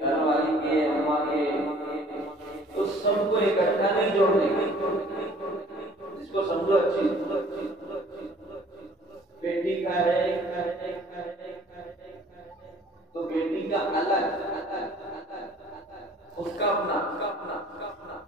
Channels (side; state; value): both; normal; correlation 0.54